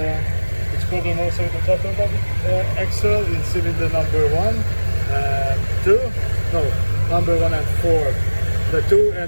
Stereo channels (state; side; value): inverted; both; correlation -1.00